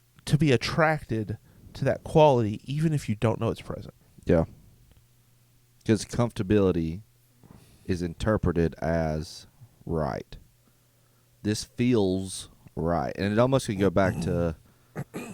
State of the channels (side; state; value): both; identical; correlation 1.00